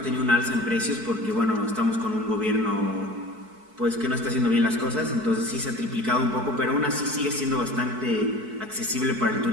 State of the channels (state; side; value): late; left; 4.6 ms